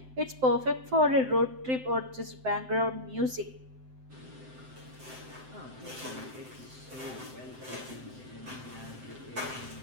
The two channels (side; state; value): left; late; 7.7 ms